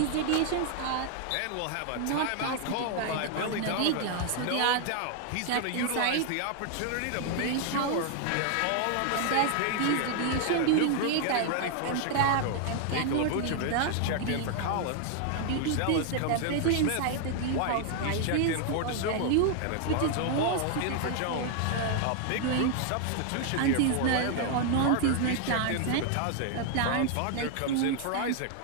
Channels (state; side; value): different; both; correlation 0.00